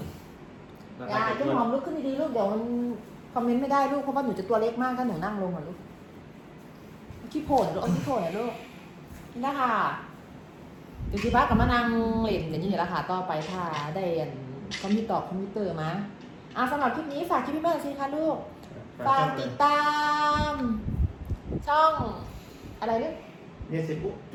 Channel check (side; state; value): both; identical; correlation 1.00